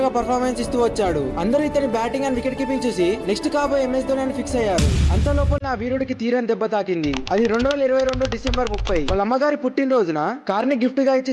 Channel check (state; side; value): identical; both; correlation 1.00